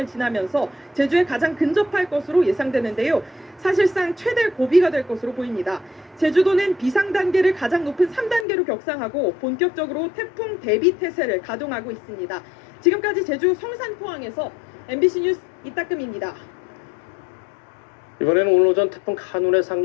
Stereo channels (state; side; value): drops out; right; at 8.5 s